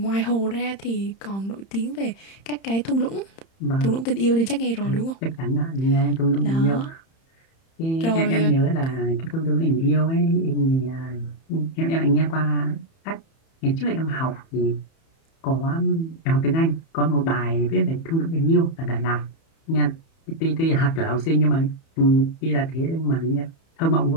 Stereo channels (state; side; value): late; right; 31 ms